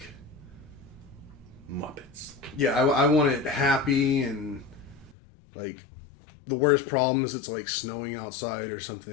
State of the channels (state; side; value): drops out; right; at 5.2 s